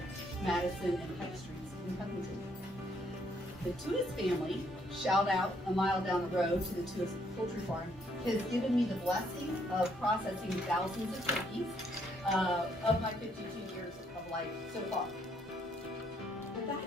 Madison and Pike Streets in Covington. The Tuis family, shout out a mile down the road to the Tuis Poultry Farm, has given me the blessing of processing thousands of turkeys of my 52 years of life so far. But that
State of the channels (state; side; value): normal; both; correlation 0.70